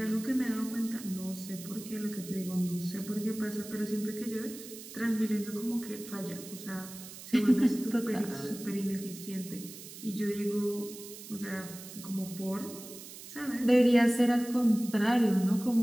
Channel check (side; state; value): right; noise; hiss, 14 dB below the sound